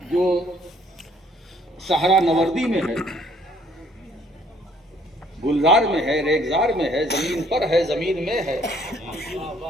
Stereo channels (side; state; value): both; normal; correlation 0.62